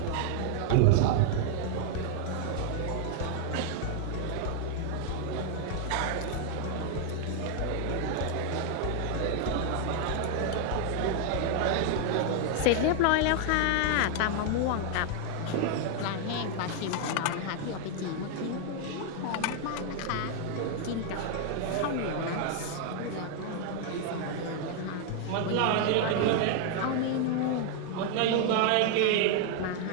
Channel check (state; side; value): different; both; correlation 0.00